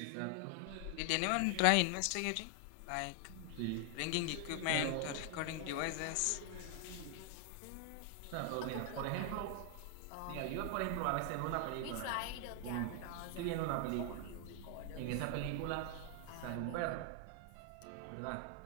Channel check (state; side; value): different; both; correlation 0.00